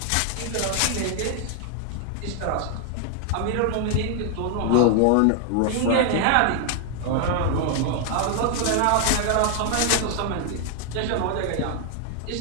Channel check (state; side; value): different; both; correlation 0.00